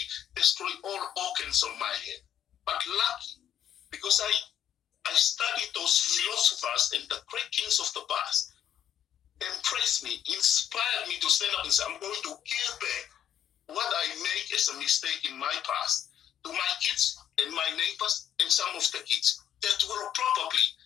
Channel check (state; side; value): quieter; right; 10.1 dB